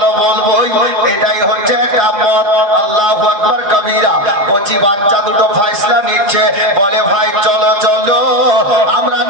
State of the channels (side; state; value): left; late; 5.2 ms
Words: বলবোই, এটাই হচ্ছে একটা মত। আল্লাহু আকবার কবীরা। কচি বাচ্চা দুটো ফয়সালা নিচ্ছে, বলে ভাই চলো চলো আমরা